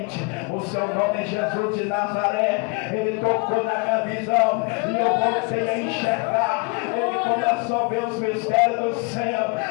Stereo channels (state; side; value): quieter; right; 31.0 dB